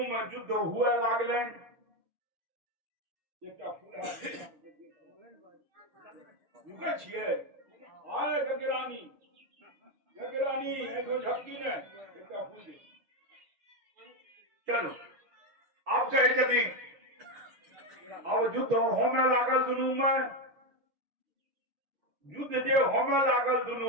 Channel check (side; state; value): left; late; 6.2 ms